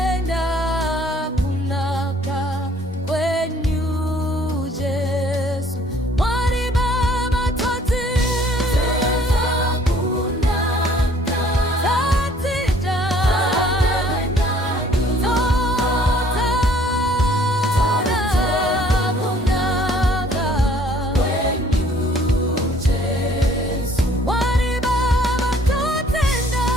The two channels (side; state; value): both; normal; correlation 0.58